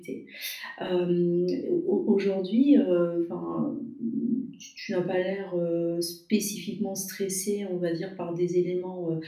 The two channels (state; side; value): identical; both; correlation 1.00